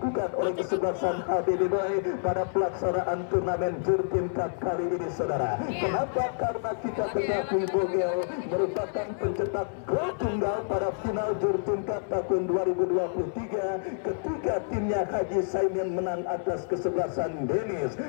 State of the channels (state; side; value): silent; right; 59 dB below the other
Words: oleh kesebelasan HBD Boy pada pelaksanaan turnamen Jurtin Cup kali ini saudara. Kenapa? Karena kita ketahui Bogel merupakan pencetak gol tunggal pada final Jurtin Cup tahun 2023 ketika timnya Haji Saimin menang atas kesebelasan Denis,